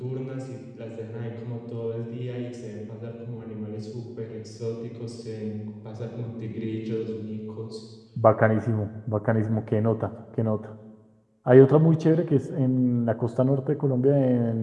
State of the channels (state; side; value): identical; both; correlation 1.00